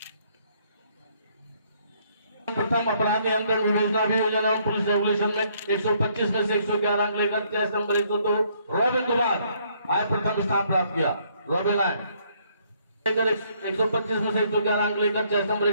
प्रथम अपराध नियंत्रण विवेचना अभियोजन एवं पुलिस रेगुलेशन में 125 में से 111 अंक लेकर चेस्ट नंबर 102 रोबिन कुमार आए प्रथम स्थान प्राप्त किया। रोबिन आए 125 में से 111 अंक लेकर चेस्ट नंबर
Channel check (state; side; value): inverted; both; correlation -0.67